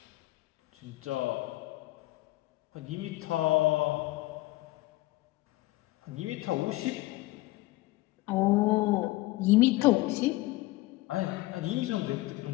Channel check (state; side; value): quieter; right; 19.1 dB